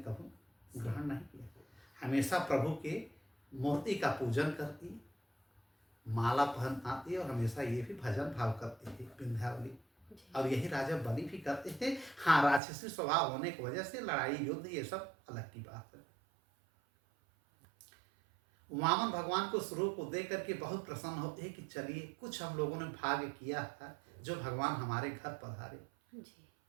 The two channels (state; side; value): drops out; left; at 12.6 s